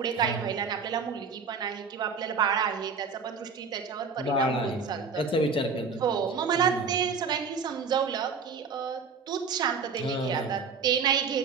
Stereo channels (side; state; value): left; quieter; 5.2 dB